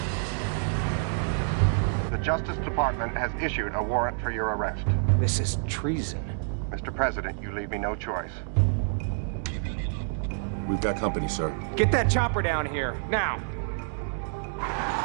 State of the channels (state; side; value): silent; left; digital silence